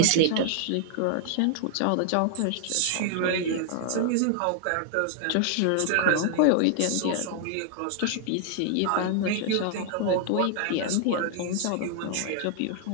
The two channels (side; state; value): both; different; correlation 0.00